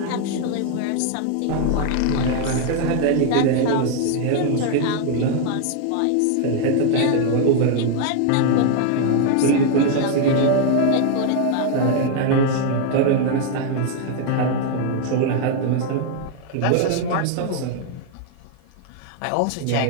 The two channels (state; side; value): different; both; correlation 0.00